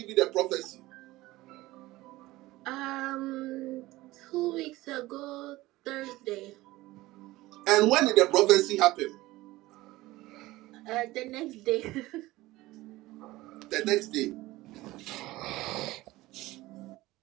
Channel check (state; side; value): quieter; left; 18.4 dB